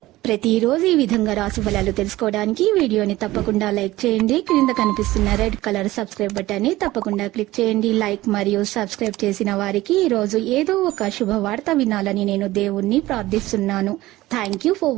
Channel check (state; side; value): quieter; left; 17.4 dB